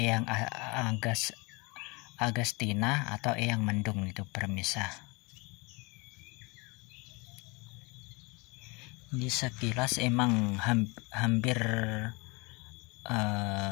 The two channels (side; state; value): right; quieter; 27.4 dB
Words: Agustina atau Eyang Mendung itu pemirsa. Ini sekilas emang hampir